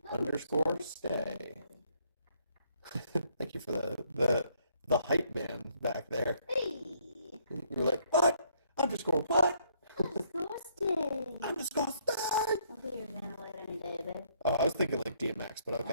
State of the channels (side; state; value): both; inverted; correlation -0.68